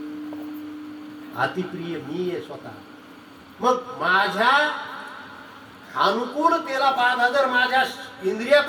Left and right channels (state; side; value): identical; both; correlation 1.00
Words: अतिप्रिय मी आहे स्वतः. मग माझ्या अनुकूलतेला बाधा जर माझ्या